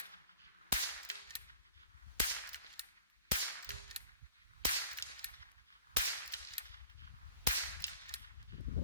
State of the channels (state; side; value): inverted; both; correlation -0.45